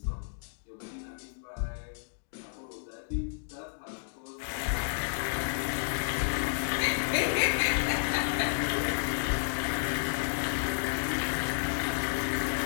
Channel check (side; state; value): right; silent; digital silence